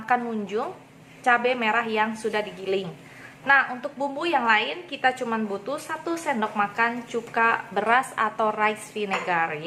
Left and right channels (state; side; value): identical; both; correlation 1.00